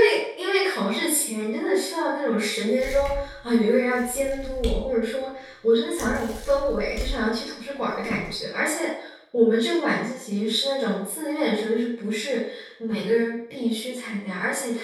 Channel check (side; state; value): both; identical; correlation 1.00